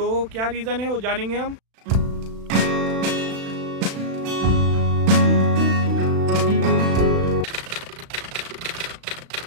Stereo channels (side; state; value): left; late; 36 ms